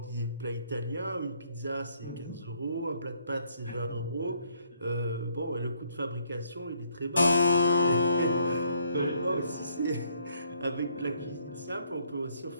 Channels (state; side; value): inverted; both; correlation -0.69